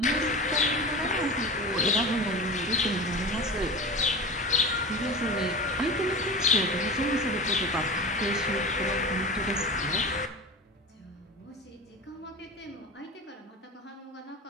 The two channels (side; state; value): both; normal; correlation 0.30